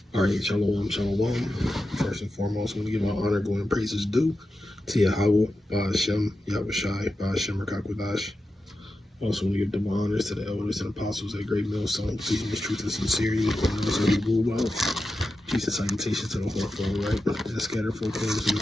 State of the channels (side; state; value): both; normal; correlation 0.90